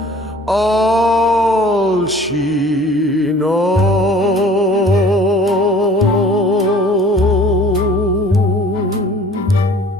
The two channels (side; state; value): both; normal; correlation 0.50